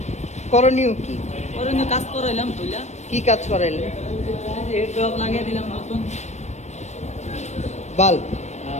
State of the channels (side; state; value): right; late; 0.33 ms